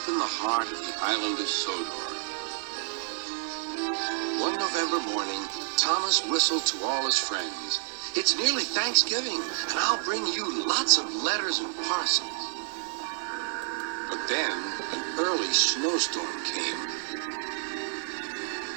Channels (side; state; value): left; silent; digital silence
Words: in the heart of the island of Sodor. One November morning, Thomas whistled to all his friends. It's nearly Thanksgiving, and I'll bring you lots of letters and parcels. But then, an early snowstorm came.